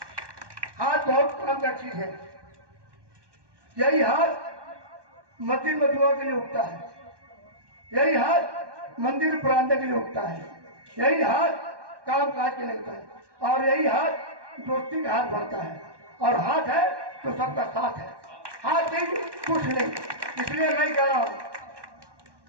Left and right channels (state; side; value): late; left; 1.2 ms